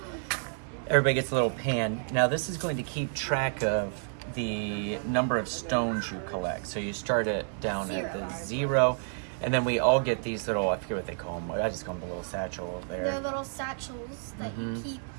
Everybody gets a little pan. Now this is going to keep track of the number of stones you collect. So you start it down at the 0, and then we all get these little, I forget what they call them. I just call them the little satchel over there. They're little satchels that you keep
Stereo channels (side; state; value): left; silent; digital silence